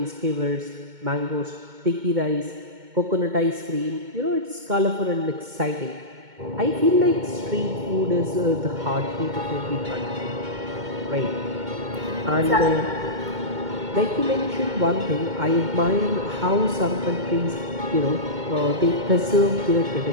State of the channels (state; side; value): late; left; 2.2 ms